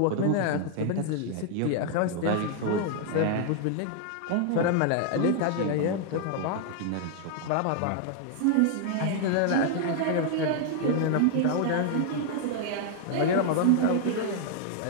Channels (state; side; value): different; both; correlation 0.00